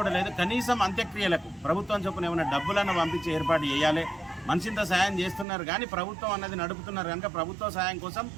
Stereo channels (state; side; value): drops out; left; at 5.5 s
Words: లేదు. కనీసం అంత్యక్రియలకు ప్రభుత్వం చొప్పున ఏమైనా డబ్బులను పంపించి ఏర్పాటు చేయాలి. మనిషింత సాయం చేస్తున్నారు కానీ ప్రభుత్వం అన్నది నడుపుతున్నారు కనుక ప్రభుత్వ సాయం కోసం